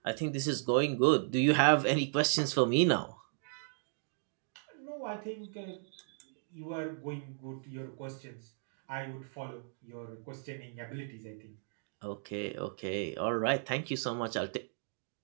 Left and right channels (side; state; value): left; silent; digital silence